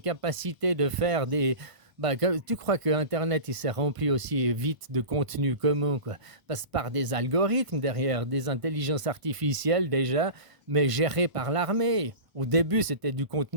de faire des. Bah, tu crois que Internet, il s'est rempli aussi vite de contenu comment, quoi? Passe par des algorithmes derrière, des intelligences artificielles déjà, mais gérées par l'armée. Au début, c'était du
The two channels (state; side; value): late; left; 1.0 ms